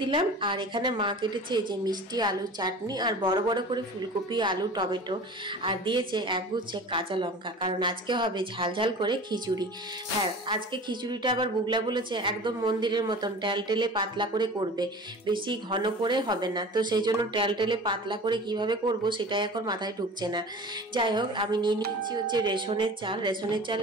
দিলাম। আর এখানে মা কেটেছে যে মিষ্টি আলুর চাটনি, আর বড় বড় করে ফুলকপি, আলু, টমেটো, আর দিয়েছে একগুচ্ছে কাঁচা লঙ্কা, কারণ আজকে হবে ঝাল ঝাল করে খিচুড়ি। হ্যাঁ, আজকে খিচুড়িটা আবার বুগলা বলেছে একদম মন্দিরের মতন টেলটেলে পাতলা করে করবে, বেশি ঘন করে হবে না। তো সেই জন্য টেলটেলে পাতলা করে কিভাবে করব সেটাই এখন মাথায় ঢুকছে না। যাই হোক, আমি নিয়ে নিচ্ছি হচ্ছে রেশনের চাল। রেশনের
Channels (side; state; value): both; normal; correlation 0.38